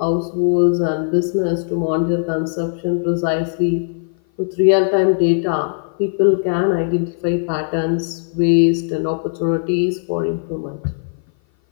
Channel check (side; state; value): right; silent; 57 dB below the other